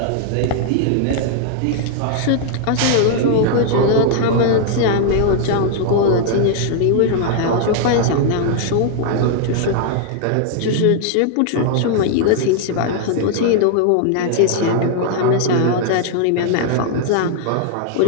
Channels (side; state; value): both; different; correlation 0.00